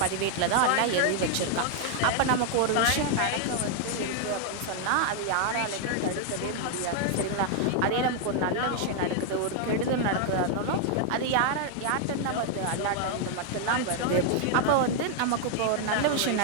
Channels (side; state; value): both; different; correlation 0.00